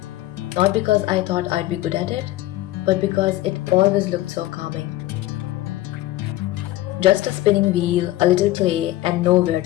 Not because I thought I'd be good at it, but because it always looked so calming. Just a spinning wheel, a little clay, and nowhere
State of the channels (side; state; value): right; quieter; 15.9 dB